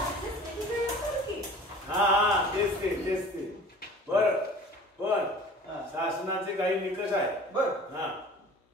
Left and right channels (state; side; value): normal; both; correlation 0.45